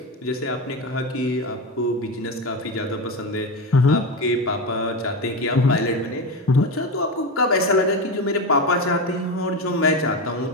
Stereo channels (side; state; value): both; normal; correlation 0.18